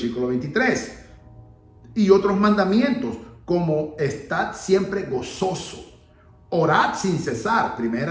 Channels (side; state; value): both; identical; correlation 1.00